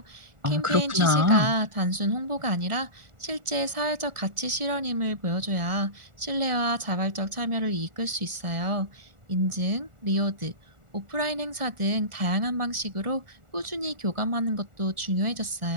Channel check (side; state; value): left; late; 1.4 ms